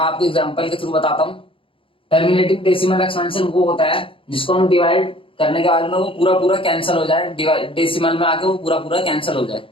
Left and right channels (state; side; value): late; right; 0.26 ms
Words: आपको एग्जांपल के थ्रू बताता हूँ। टर्मिनेटिंग डेसिमल एक्सपेंशन वो होता है जिसको हम डिवाइड करने के बाद में वो पूरा कैंसिल हो जाए, डेसिमल में आके वो पूरा कैंसिल हो जाए।